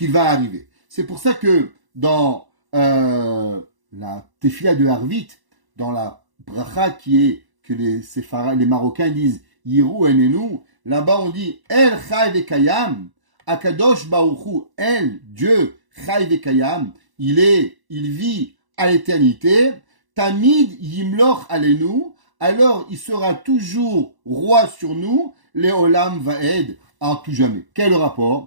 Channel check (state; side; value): late; left; 1.1 ms